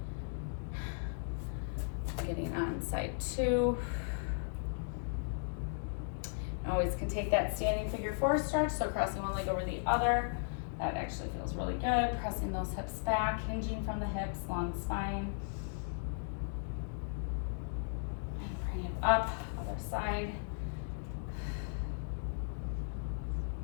Getting on side 2. Always can take that standing figure 4 stretch, so crossing one leg over the other. That actually feels really good. Pressing those hips back, hinging from the hips, long spine. And bring it up, other side.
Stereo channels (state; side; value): silent; right; digital silence